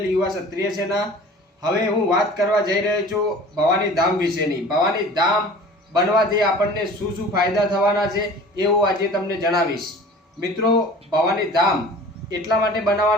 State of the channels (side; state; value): both; normal; correlation 0.43